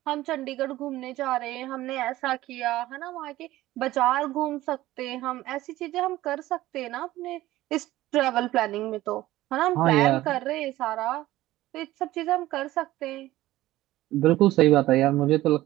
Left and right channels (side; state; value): left; quieter; 16.2 dB